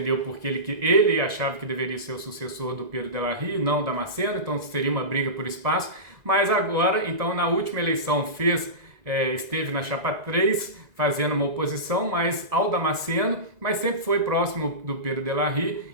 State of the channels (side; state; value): left; late; 2.0 ms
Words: porque ele achava que deveria ser o sucessor do Pedro de la Rive, não Damasceno, então seria uma briga por espaço, mas agora, então na última eleição esteve na chapa 3, fazendo uma oposição mais ao Damasceno, mas sempre foi próximo do Pedro de la Rive